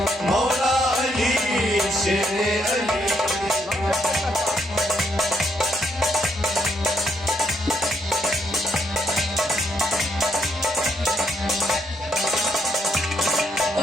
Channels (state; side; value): normal; both; correlation 0.75